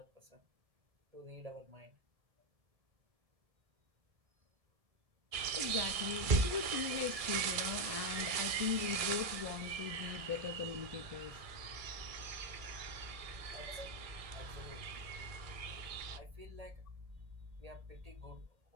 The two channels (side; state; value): left; late; 1.7 ms